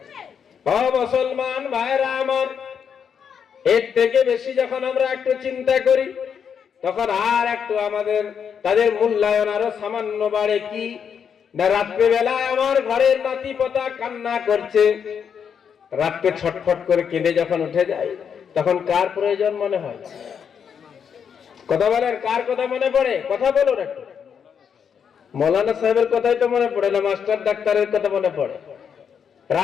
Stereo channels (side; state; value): right; quieter; 7.3 dB